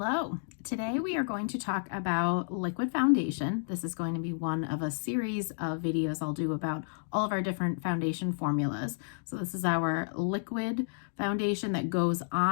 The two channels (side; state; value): right; silent; digital silence